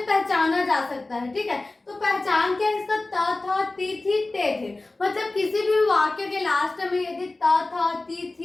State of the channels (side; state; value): right; quieter; 3.1 dB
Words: जा सकता है। ठीक है, तो पहचान क्या है इसका? त था, ती थी, ते थे। मतलब किसी भी वाक्य के लास्ट में यदि त था, ती